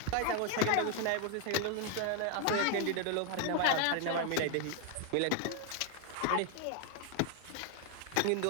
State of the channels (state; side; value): different; both; correlation 0.00